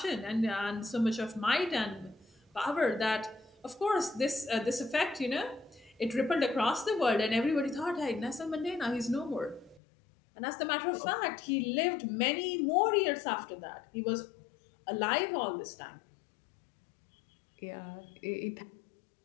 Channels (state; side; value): drops out; right; at 9.8 s